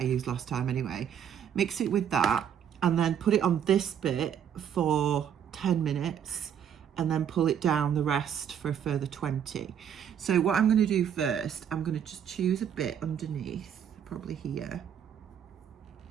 used last time anyway. Mix it with that and then put it on this bit for 10 minutes and then pull it down the rest for a further 20. So what I'm going to do first, I'm going to just choose a bit underneath, probably here,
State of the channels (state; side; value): quieter; left; 8.7 dB